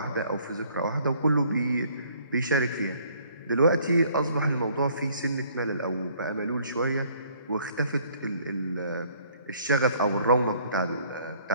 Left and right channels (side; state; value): both; inverted; correlation -0.60